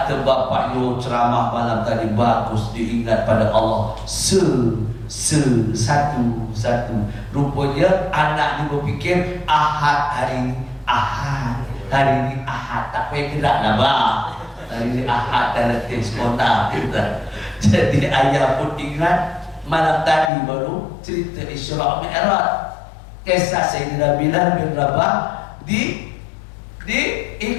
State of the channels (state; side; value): drops out; right; at 20.3 s